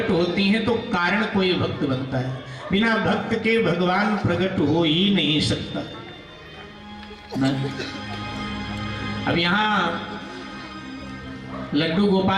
होती हैं तो कारण कोई भक्त बनता है, बिना भक्त के भगवान प्रकट हो ही नहीं सकता। अब यहां लड्डू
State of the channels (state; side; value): identical; both; correlation 1.00